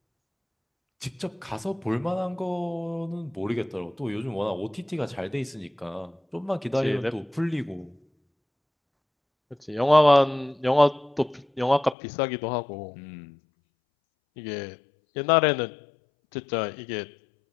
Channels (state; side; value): drops out; right; at 12.0 s